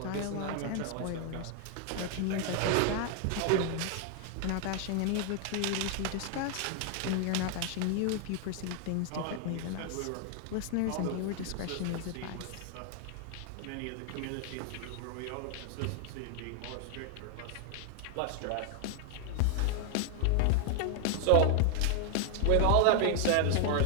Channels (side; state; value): both; different; correlation 0.00